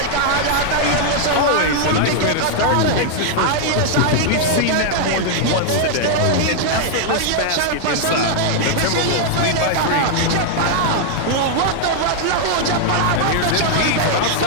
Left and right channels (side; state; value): both; different; correlation -0.01